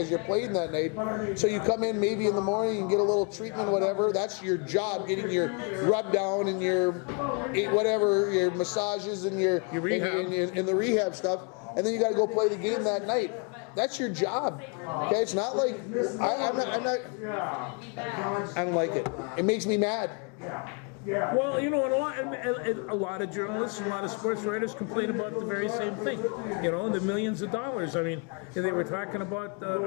you're playing that night. So you come in maybe in the morning and get a little treatment, whatever. That's your job, getting your rub down and your whatever, your massages and your rehab and the rehab stuff. And then you got to go play the game that night. That's your job. Okay, it's not like I don't like it. It makes me mad. Well, you know, a lot of journalists, a lot of sports writers complain about the very same thing. You know, the millions of dollars. I mean, they were talking about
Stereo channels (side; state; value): right; quieter; 35.3 dB